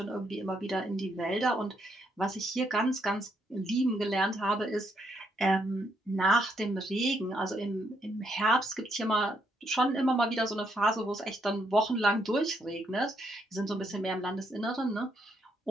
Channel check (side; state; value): both; normal; correlation 0.75